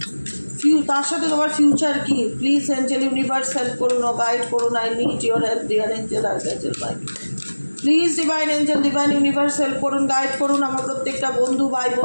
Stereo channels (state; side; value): inverted; both; correlation -1.00